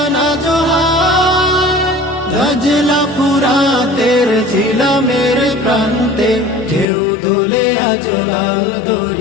জোহার। দজলা ফুরাতের জিলামের প্রান্তে ঢেউ দোলে আজ লাল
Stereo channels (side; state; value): right; drops out; at 6.9 s